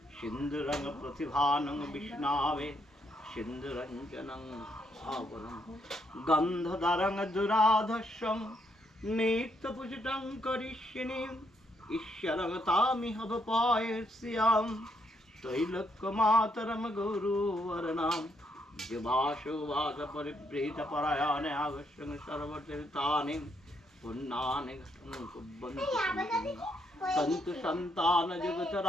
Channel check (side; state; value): both; normal; correlation 0.75